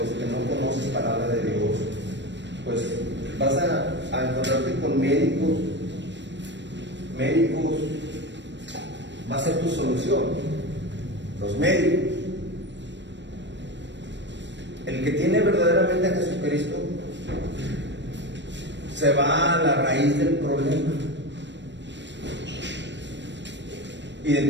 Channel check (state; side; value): late; left; 0.53 ms